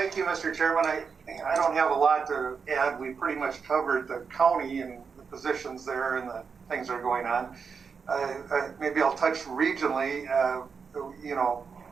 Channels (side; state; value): left; quieter; 5.7 dB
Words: you, Mr. Chairman. I don't have a lot to add. We pretty much covered the county and the positions there and the things that are going on. Maybe I'll touch regionally.